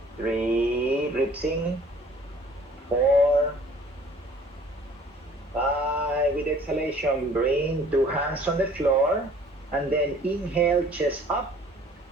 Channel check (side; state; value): both; normal; correlation 0.53